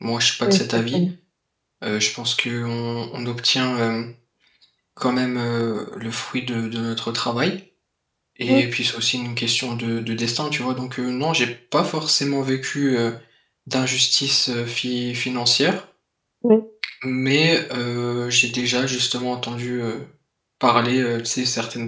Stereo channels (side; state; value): both; identical; correlation 1.00